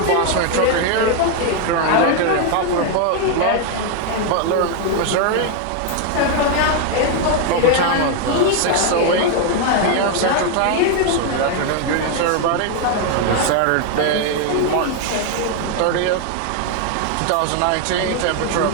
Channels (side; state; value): both; different; correlation 0.01